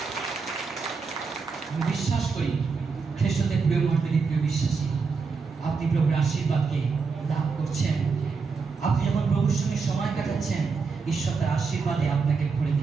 আমি বিশ্বাস করি খ্রিস্টদের প্রিয় মণ্ডলী, প্রিয় বিশ্বাসী, আপনি প্রভুর আশীর্বাদকে লাভ করছেন। আপনি যখন প্রভুর সঙ্গে সময় কাটাচ্ছেন, ঈশ্বর তার আশীর্বাদে আপনাকে ভরে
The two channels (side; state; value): left; quieter; 4.9 dB